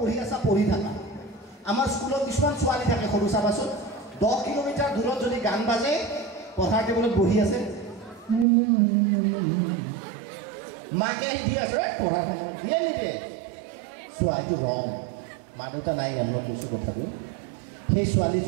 আছা পঢ়ি থাকা আমাৰ স্কুলত কিছুমান ছোৱালী থাকে সৰু চাবাচোন 10 কিলোমিটাৰ দূৰত যদি গান বাজে পঢ়াৰ টেবুলত বহি আছে মাকে আহি দি আছে পঢ়াৰ সময় দিয়ে নিদিয়ে চোৱা এইটো ৰং মা দেউতা নাই আমি কৈছোঁ কথাটো সেই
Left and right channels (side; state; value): left; drops out; at 8.5 s